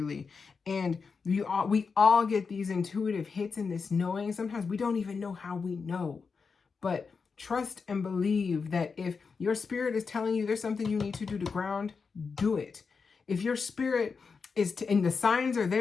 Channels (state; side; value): quieter; right; 5.2 dB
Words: And we all get these intuitive hits and this knowing. Sometimes we don't even know how we know. But trust and believe that if your spirit is telling you there's something you need to do to ground, do it. If your spirit and the signs are